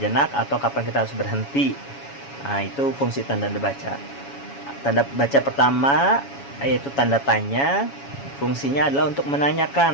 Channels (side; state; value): right; late; 7.2 ms